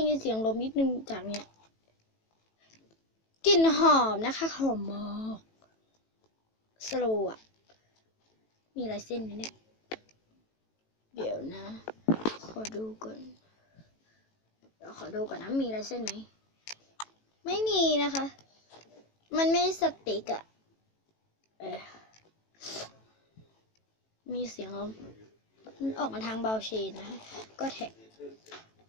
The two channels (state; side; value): late; right; 18 ms